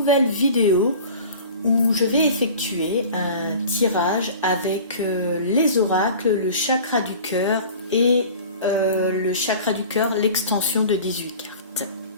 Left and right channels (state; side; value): inverted; both; correlation -0.41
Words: vidéo où je vais effectuer un tirage avec les oracles, le chakra du cœur et le chakra du cœur, l'extension de 18 cartes.